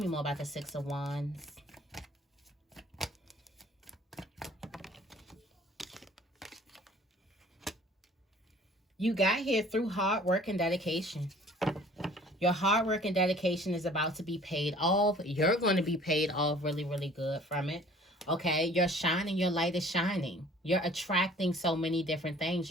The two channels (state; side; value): normal; both; correlation 0.52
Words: more about the Six of Wands. You got here through hard work and dedication. Your hard work and dedication is about to be paid off. You're going to be paid off really, really good from it. Okay, you're shining, your light is shining. You're attracting so many different things.